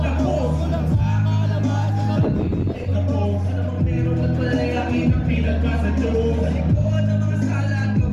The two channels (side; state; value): both; identical; correlation 1.00